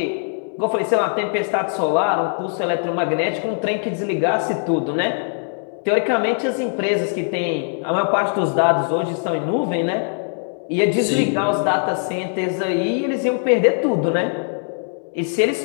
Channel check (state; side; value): silent; right; 64 dB below the other